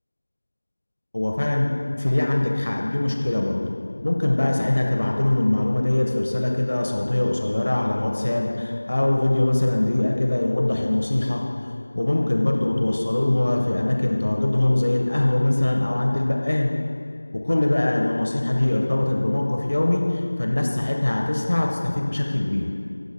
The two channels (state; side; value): inverted; both; correlation -1.00